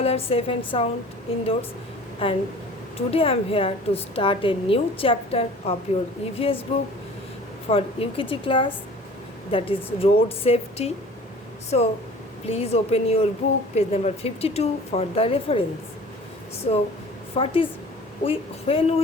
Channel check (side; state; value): both; normal; correlation 0.45